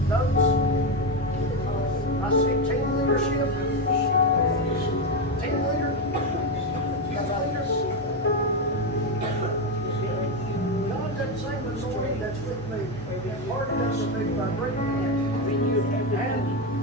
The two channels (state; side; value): normal; both; correlation 0.10